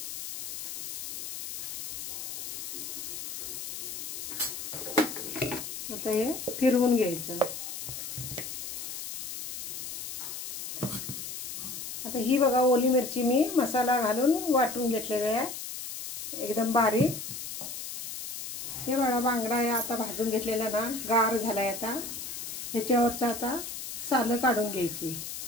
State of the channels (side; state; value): left; noise; hiss, 7 dB below the sound